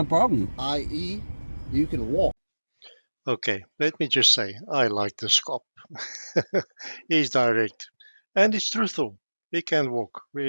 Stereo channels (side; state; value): both; inverted; correlation -1.00